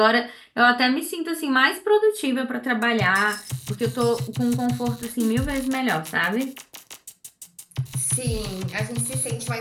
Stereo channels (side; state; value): both; identical; correlation 1.00